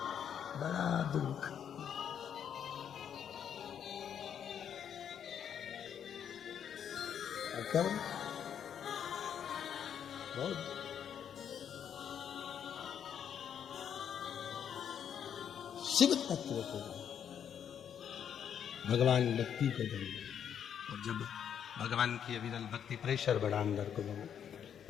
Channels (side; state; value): right; quieter; 8.6 dB